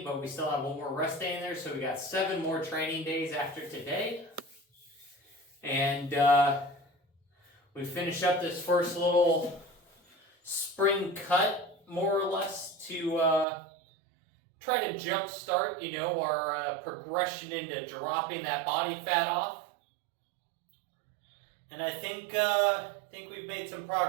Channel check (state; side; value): drops out; left; at 13.5 s